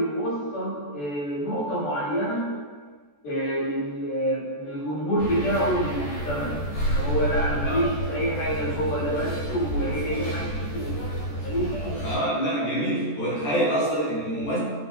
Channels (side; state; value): right; late; 14 ms